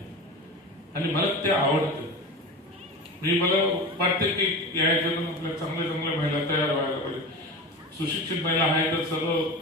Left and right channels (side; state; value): both; normal; correlation 0.29